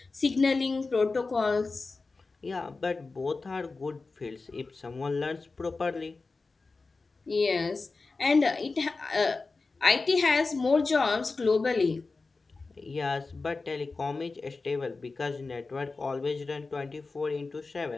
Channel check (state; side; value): quieter; right; 3.9 dB